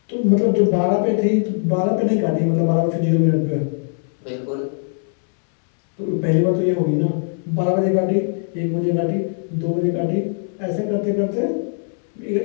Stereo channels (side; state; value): right; silent; digital silence